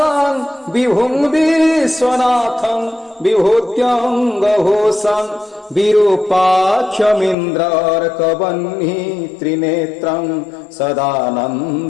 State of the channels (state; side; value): drops out; right; at 7.4 s